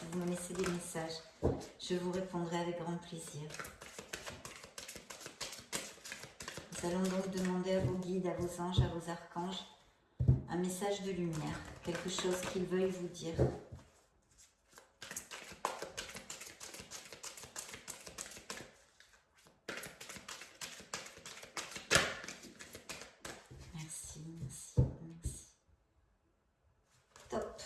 vous me laissez des messages. Je vous répondrai avec grand plaisir. Nous allons donc demander à vos guides, à vos anges, à vos archanges, un message de lumière, quelque chose qu'ils veuillent vous dire. Merci, merci, merci. Top.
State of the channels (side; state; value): both; identical; correlation 1.00